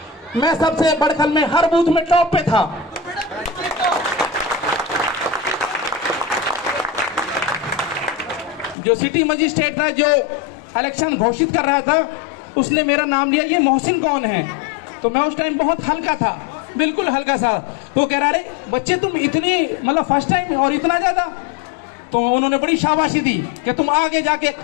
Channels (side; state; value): right; drops out; at 8.8 s